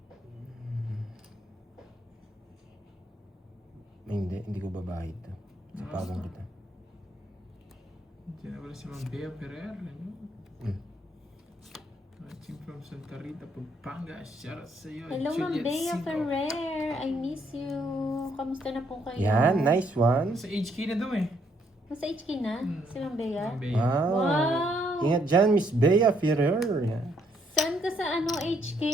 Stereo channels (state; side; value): normal; both; correlation 0.71